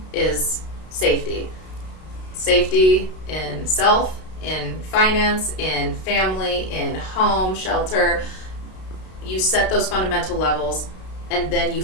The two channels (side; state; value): right; late; 32 ms